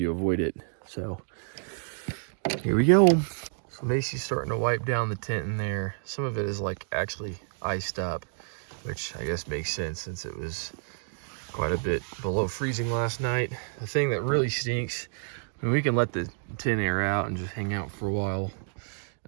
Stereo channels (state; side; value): silent; left; digital silence